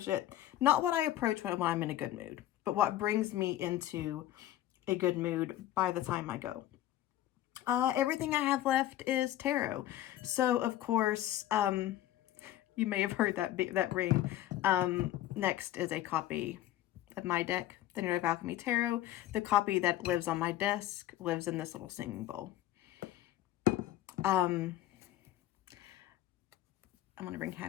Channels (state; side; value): quieter; right; 13.6 dB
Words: it, not what I approach when I'm in a good mood, but what brings me into a good mood by the time I go. Everything I have left is tarot. So of course, you may have heard that ring. Next is a copy of my deck, the Narrative Alchemy Tarot. The copy that lives on my desk lives in this little singing bowl. I'm going to bring